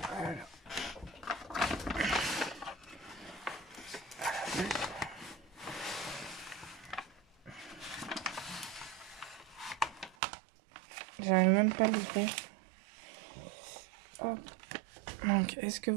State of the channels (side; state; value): left; drops out; at 10.2 s